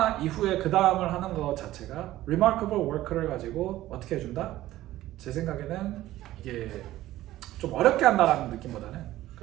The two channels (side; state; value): left; quieter; 15.2 dB